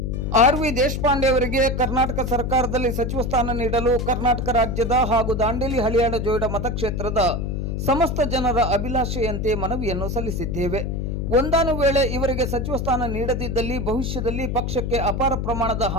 ಆರ್.ವಿ. ದೇಶಪಾಂಡೆ ಅವರಿಗೆ ಕರ್ನಾಟಕ ಸರ್ಕಾರದಲ್ಲಿ ಸಚಿವ ಸ್ಥಾನ ನೀಡಲು ಕರ್ನಾಟಕ ರಾಜ್ಯದ ಹಾಗೂ ದಾಂಡೇಲಿ ಹಳಿಯಾಳ ಜೋಯಿಡಾ ಮತಕ್ಷೇತ್ರದ ಸಮಸ್ತ ಜನರ ಅಭಿಲಾಷೆಯಂತೆ ಮನವಿಯನ್ನು ಸಲ್ಲಿಸಿದ್ದೇವೆ. ಒಂದಾನು ವೇಳೆ ಇವರಿಗೆ ಸಚಿವ ಸ್ಥಾನ ನೀಡದಿದ್ದಲ್ಲಿ ಭವಿಷ್ಯದಲ್ಲಿ ಪಕ್ಷಕ್ಕೆ ಅಪಾರ ಪ್ರಮಾಣದ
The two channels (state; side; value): noise; left; hum, 2 dB below the sound